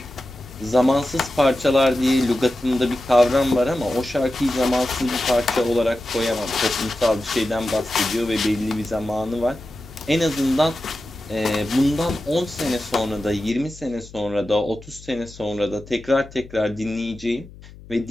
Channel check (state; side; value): noise; left; hum, 19 dB below the sound